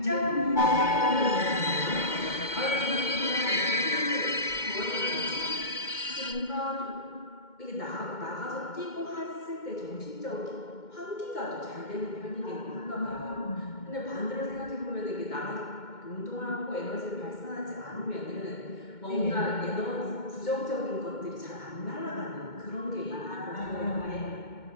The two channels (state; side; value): late; right; 2.2 ms